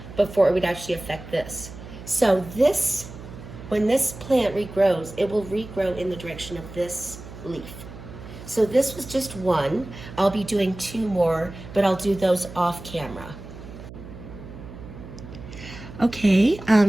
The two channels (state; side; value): noise; right; hum, 14 dB below the sound